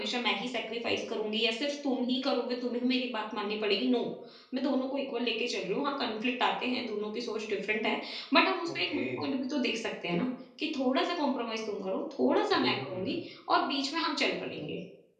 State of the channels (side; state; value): both; identical; correlation 1.00